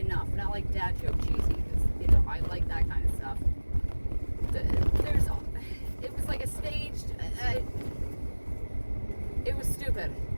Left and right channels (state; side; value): inverted; both; correlation -1.00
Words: not like dad joke cheesy, because, I like that kind of stuff. It was like a staged, it was stupid.